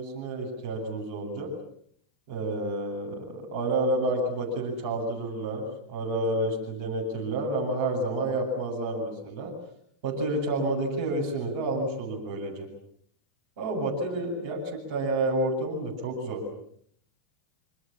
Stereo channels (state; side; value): late; left; 3.0 ms